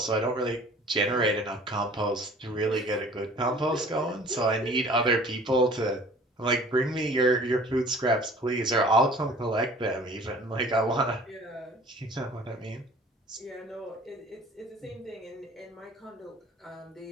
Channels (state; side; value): normal; both; correlation 0.48